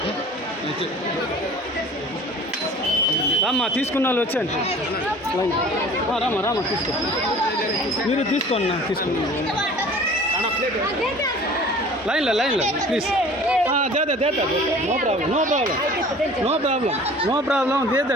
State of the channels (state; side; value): normal; both; correlation 0.46